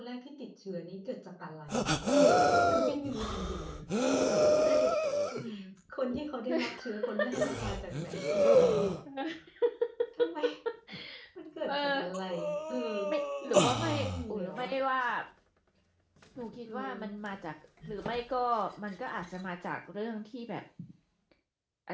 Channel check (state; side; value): identical; both; correlation 1.00